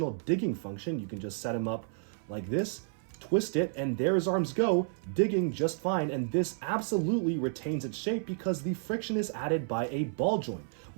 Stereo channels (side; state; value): left; silent; 56 dB below the other